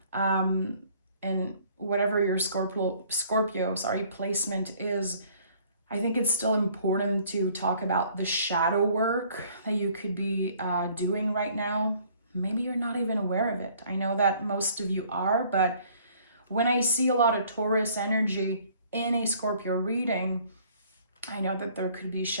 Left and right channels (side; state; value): both; inverted; correlation -0.58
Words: And whatever your Scorpio placement is, I think it's still important to talk about the shadow work that you could be doing right now. Maybe you're not even aware of it. I know that most of you are, but when I see a lot of Taurus energy in a Scorpio reading, I know that there could be